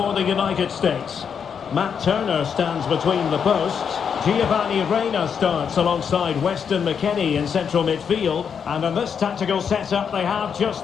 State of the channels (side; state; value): right; quieter; 7.1 dB